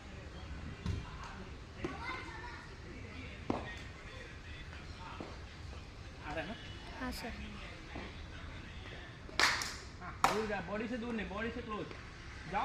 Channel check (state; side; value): identical; both; correlation 1.00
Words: आ रहा है ना? हाँ सर। हाँ दूर जा, बॉडी से दूर नहीं, बॉडी से क्लोज